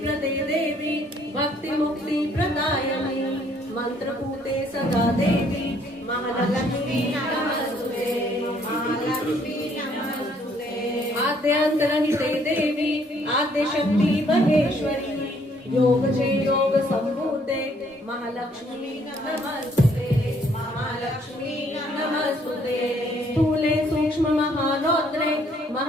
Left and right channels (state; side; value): normal; both; correlation 0.65